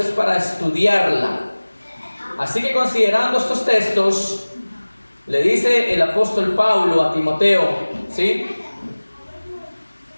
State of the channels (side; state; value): both; inverted; correlation -1.00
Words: para estudiarla. Así que, considerando estos textos, le dice el apóstol Pablo a Timoteo, ¿sí?